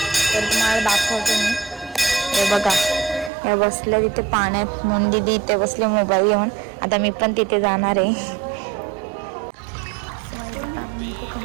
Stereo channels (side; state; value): left; drops out; at 3.3 s